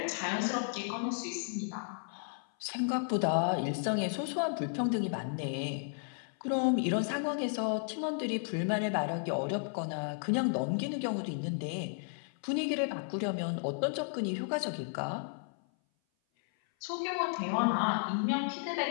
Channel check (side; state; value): right; silent; 55 dB below the other